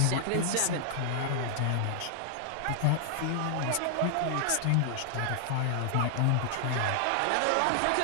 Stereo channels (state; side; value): different; both; correlation -0.01